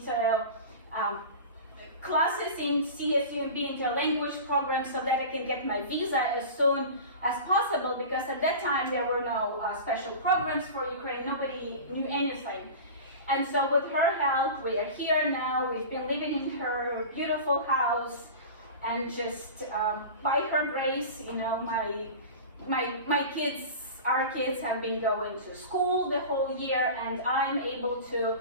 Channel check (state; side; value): inverted; both; correlation -0.33